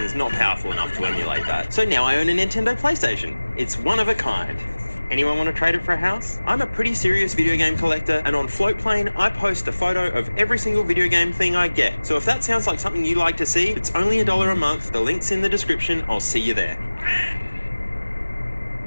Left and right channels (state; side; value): inverted; both; correlation -1.00